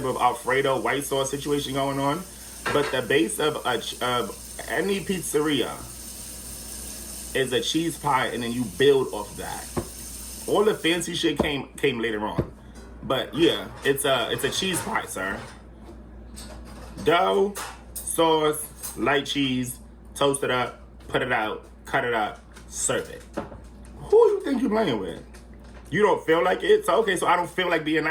of Alfredo white sauce situation going on. But the base of any pizzeria is a cheese pie, and then you build off that. All the fancy shit came later on. But yeah, it's a cheese pie, sir. Dough, sauce, light cheese, toast it up, put it out, cut it up, serve it. Who you think you're playing with? You don't feel like it? So okay, so I don't feel like being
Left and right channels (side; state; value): both; identical; correlation 1.00